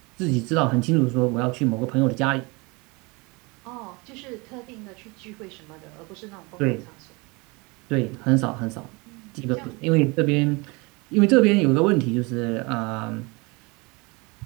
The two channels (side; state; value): left; quieter; 26.9 dB